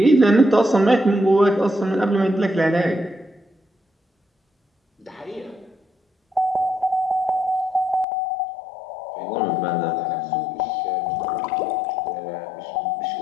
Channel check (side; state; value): right; drops out; at 8.1 s